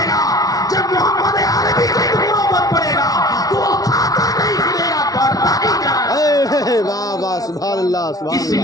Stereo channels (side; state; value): right; late; 0.18 ms